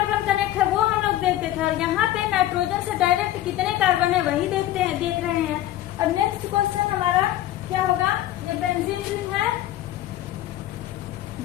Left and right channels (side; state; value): right; quieter; 13.8 dB